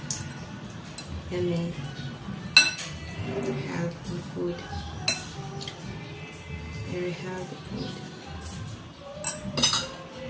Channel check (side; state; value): both; identical; correlation 1.00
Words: Yummy. Healthy food. Very healthy food.